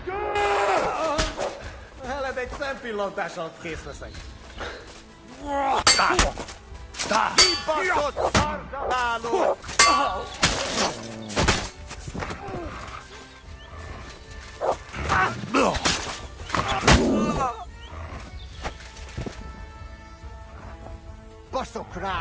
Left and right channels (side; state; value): both; identical; correlation 1.00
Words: Heled egy szempillantás alatt kész leszek. Kibaszott szarzsaváló! Baszok